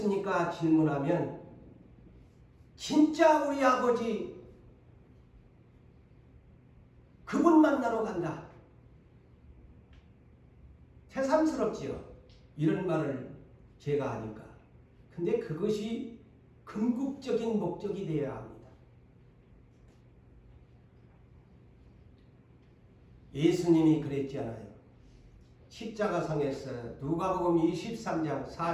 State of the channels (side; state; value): both; identical; correlation 1.00